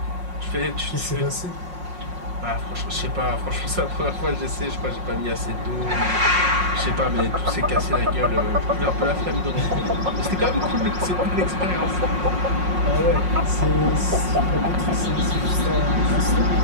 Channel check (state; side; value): late; left; 5.5 ms